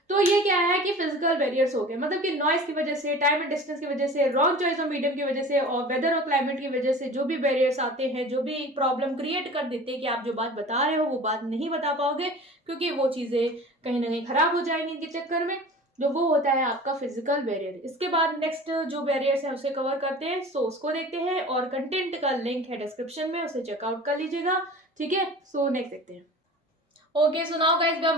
तो ये क्या है कि फिजिकल बैरियर्स हो गए, मतलब कि नॉइस की वजह से, टाइम एंड डिस्टेंस की वजह से, रॉन्ग चॉइस ऑफ मीडियम की वजह से, और वेदर और क्लाइमेट की वजह से जो भी बैरियर्स आते हैं, जो भी प्रॉब्लम क्रिएट कर देते हैं कि आप जो बात बता रहे हो वो बात नहीं बता पाओगे, क्योंकि वो चीजें कहीं ना कहीं खराब हो जाएंगी इनके चक्कर में, जो वो होता है आपका फिजिकल बैरियर। इसके बाद नेक्स्ट जो बैरियर्स है उसे कवर करते हैं, सो उसको देखते हैं, और कंटेंट का लिंक है डिस्क्रिप्शन में, उसे चेकआउट कर लीजिएगा, ठीक है। सो नेक्स्ट देखते हैं। Okay, so now guys we are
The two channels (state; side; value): normal; both; correlation 0.40